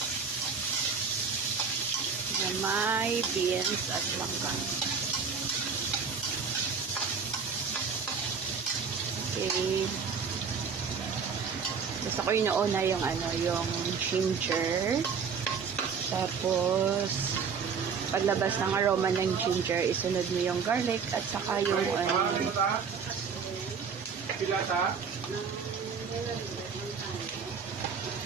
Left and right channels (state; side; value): quieter; left; 5.9 dB